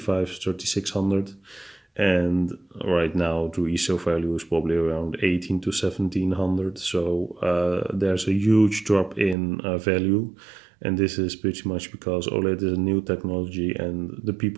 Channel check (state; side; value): drops out; left; at 9.3 s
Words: and right now the resale value is probably around 18 to 1700. So there's a huge drop in value, and this is pretty much because OLED is a new technology, and the